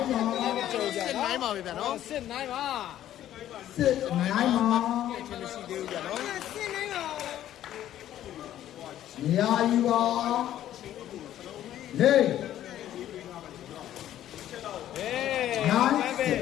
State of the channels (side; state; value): right; quieter; 12.1 dB